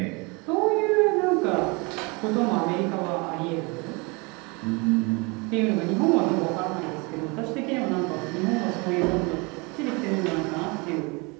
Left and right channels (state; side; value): quieter; left; 28.5 dB